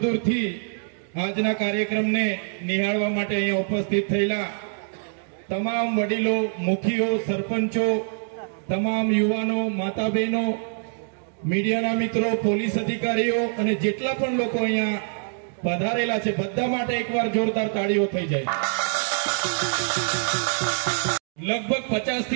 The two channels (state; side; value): silent; left; 62 dB below the other